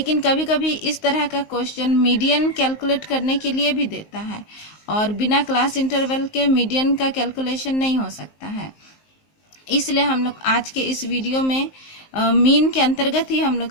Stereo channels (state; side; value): late; right; 19 ms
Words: कभी कभी इस तरह का क्वेश्चन मीडियन कैलकुलेट करने के लिए भी देता है, और बिना क्लास इंटरवल के मीडियन का कैलकुलेशन नहीं हो सकता है। इसलिए हम लोग आज के इस वीडियो में मीन के अंतर्गत ही हम लोग